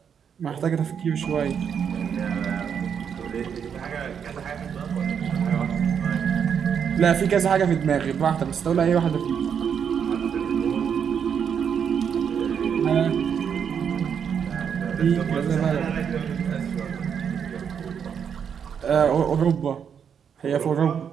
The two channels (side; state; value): left; quieter; 7.5 dB